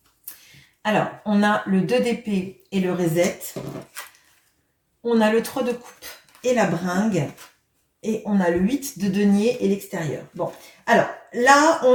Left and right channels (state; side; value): identical; both; correlation 1.00